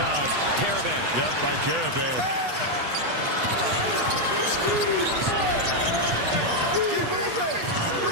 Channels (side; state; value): left; late; 8.1 ms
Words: Caravan. Yep, by Caravan.